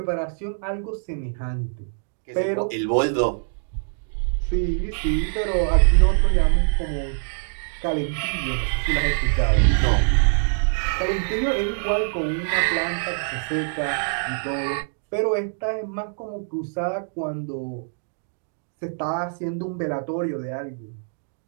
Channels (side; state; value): left; silent; digital silence